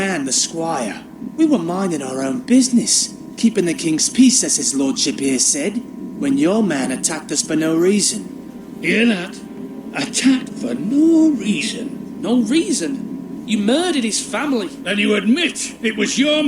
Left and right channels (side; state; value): both; identical; correlation 1.00